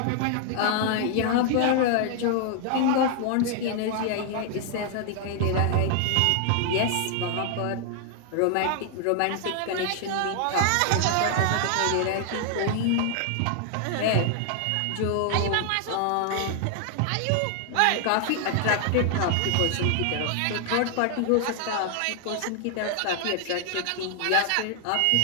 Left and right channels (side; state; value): both; different; correlation 0.00